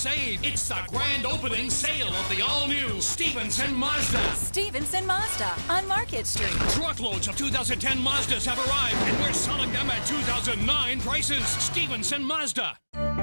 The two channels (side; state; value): both; inverted; correlation -1.00